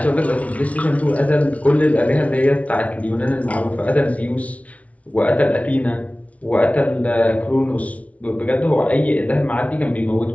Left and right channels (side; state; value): right; late; 0.066 ms